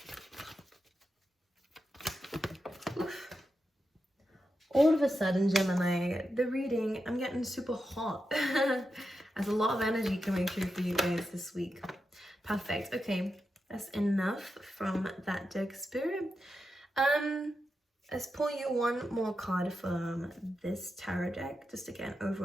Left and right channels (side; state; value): both; normal; correlation 0.88